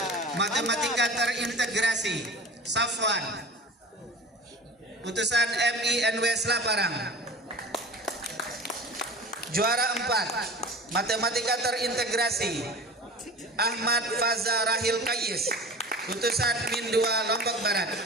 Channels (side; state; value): both; normal; correlation 0.36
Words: Matematika Terintegrasi Safwan, utusan MINW Selaparang. Juara 4 Matematika Terintegrasi Ahmad Faza Rahil Kayis, utusan Min 2 Lombok Barat.